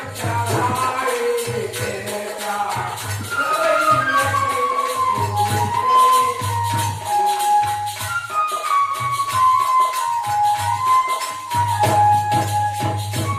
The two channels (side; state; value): both; identical; correlation 1.00